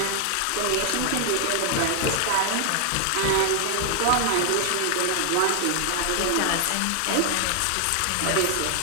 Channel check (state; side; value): different; both; correlation 0.00